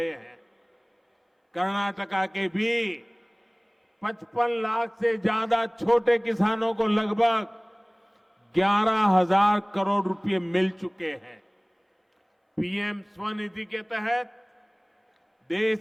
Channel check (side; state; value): both; identical; correlation 1.00